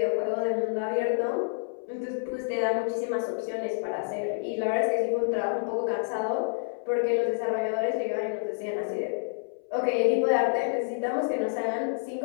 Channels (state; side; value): silent; right; 58 dB below the other